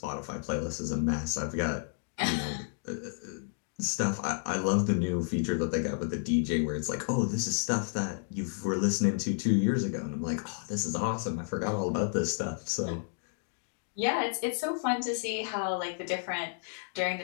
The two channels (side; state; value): right; silent; digital silence